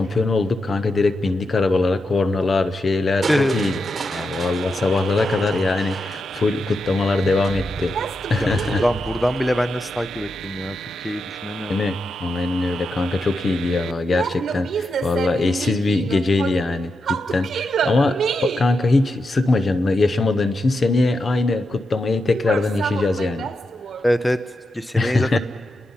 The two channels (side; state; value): both; normal; correlation 0.86